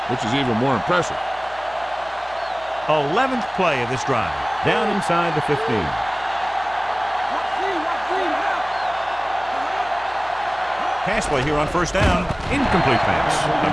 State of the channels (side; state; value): left; noise; hum, 23 dB below the sound